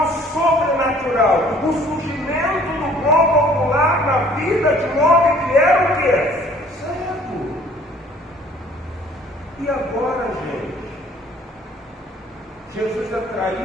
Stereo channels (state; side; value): normal; both; correlation 0.55